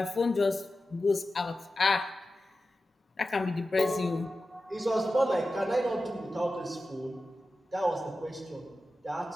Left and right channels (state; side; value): normal; both; correlation 0.93